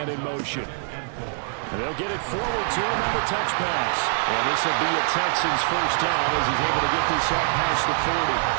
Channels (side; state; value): left; silent; digital silence